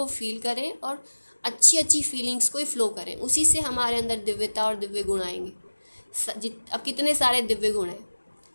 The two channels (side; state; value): both; inverted; correlation -1.00